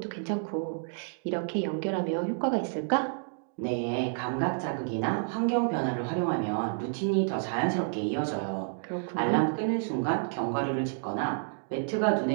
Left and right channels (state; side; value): silent; left; digital silence